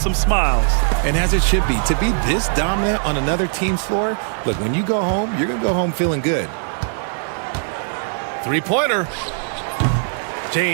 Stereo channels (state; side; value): silent; left; digital silence